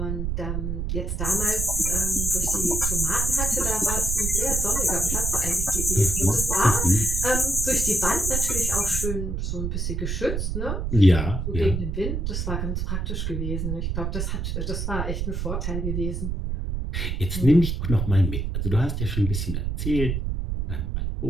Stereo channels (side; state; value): right; noise; rumble, 1 dB below the sound